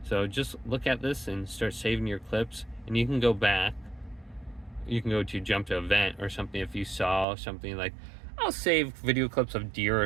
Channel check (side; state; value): left; drops out; at 7.2 s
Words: So just look at this and start saving your clips. And you can go back. You can go to jump to event or something if you saw something like, I'll save video clips of deer